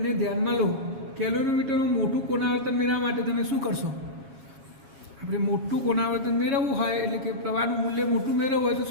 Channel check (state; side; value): late; left; 7.3 ms